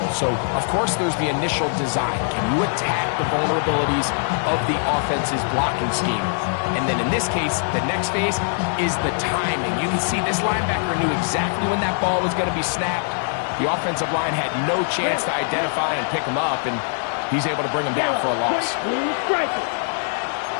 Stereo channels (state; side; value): silent; right; digital silence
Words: So, of course, there's the initial design. Can you attack the vulnerabilities of the offense's blocking scheme? And then in this case, the next phase is the timing. You can see this linebacker knew exactly when that ball was going to be snapped. The offensive line had no chance to identify and pick him up, and he's able to bring him down for a loss.